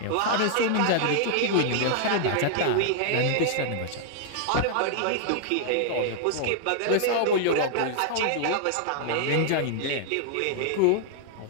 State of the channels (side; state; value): both; different; correlation -0.01